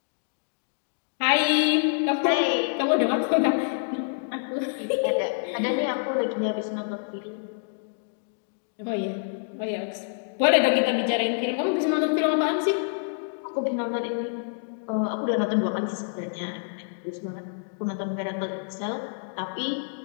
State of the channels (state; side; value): silent; right; digital silence